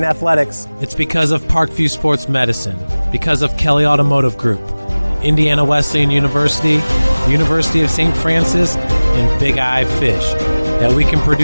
athletics. It's because of Parkview Sports Medicine, because of Kelly Automotive Group, Indiana Wesleyan University, University of St. Francis, and Big Eye Fish, that we can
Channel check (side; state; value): both; inverted; correlation -1.00